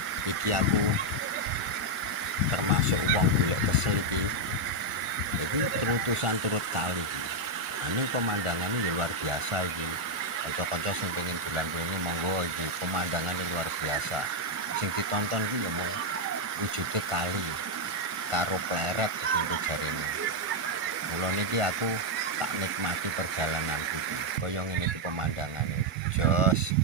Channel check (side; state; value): left; late; 1.4 ms